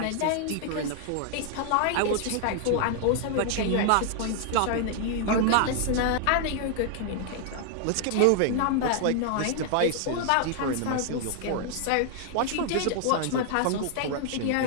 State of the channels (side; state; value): both; different; correlation 0.00